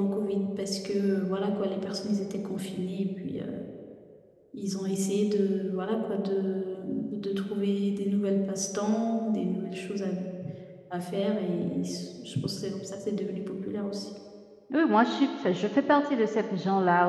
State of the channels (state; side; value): identical; both; correlation 1.00